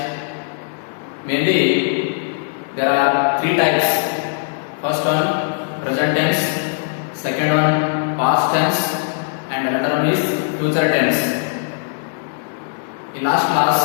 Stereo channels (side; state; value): right; silent; 66 dB below the other